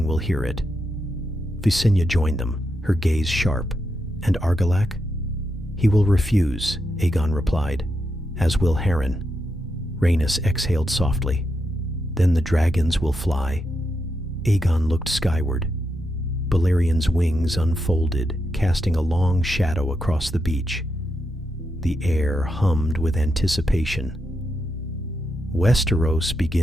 will hear it." Visenya joined them, her gaze sharp. "And Argilac?" "He will refuse," Aegon replied, "as will Harren." Rhaenys exhaled softly. "Then the dragons will fly." Aegon looked skyward. Balerion's wings unfolded, casting a long shadow across the beach. The air hummed with anticipation. "Westeros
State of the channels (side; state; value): both; normal; correlation 0.84